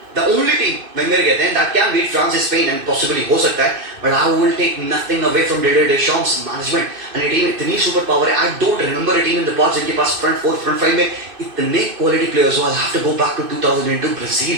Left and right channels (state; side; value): late; left; 2.6 ms